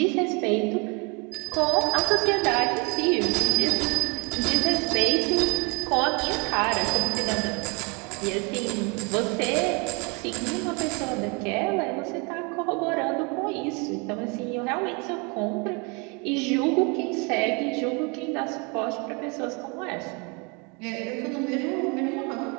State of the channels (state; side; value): quieter; left; 31.2 dB